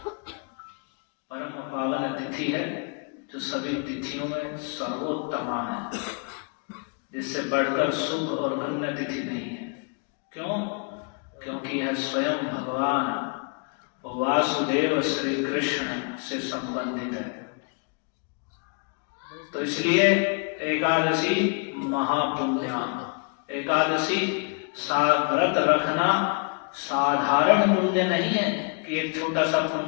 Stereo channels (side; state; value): right; quieter; 36.4 dB